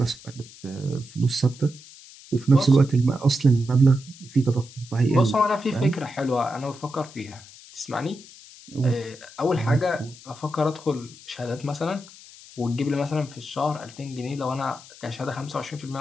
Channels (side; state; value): left; noise; hiss, 20 dB below the sound